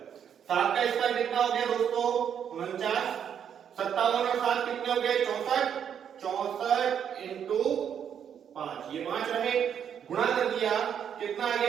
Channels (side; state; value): left; quieter; 8.5 dB